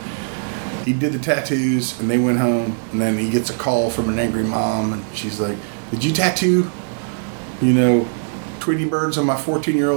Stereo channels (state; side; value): silent; left; digital silence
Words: he did the tattoos, and they went home, and then he gets a call from an angry mom, and she's like, "Did you tattoo, Tweety birds on my